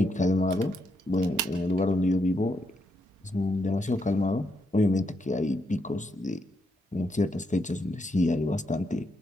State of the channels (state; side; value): normal; both; correlation 0.79